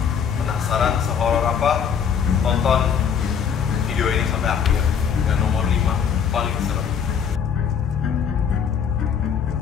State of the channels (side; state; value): right; quieter; 7.3 dB